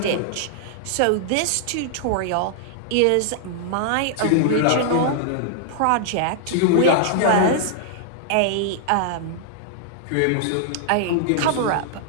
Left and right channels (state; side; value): different; both; correlation -0.01